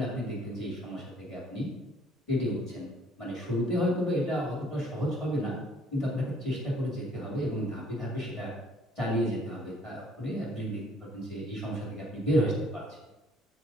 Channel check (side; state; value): both; normal; correlation 0.60